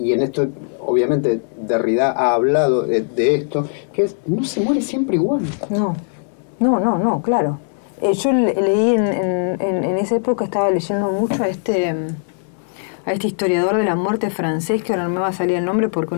en esto obviamente Derrida ha hablado de esto, que es, no se muere siempre igual. No, claro. Yo leí en esa época, estaba leyendo mucho a este historiador de la muerte francés, que ahora no me va a salir el nombre porque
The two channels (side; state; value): right; silent; digital silence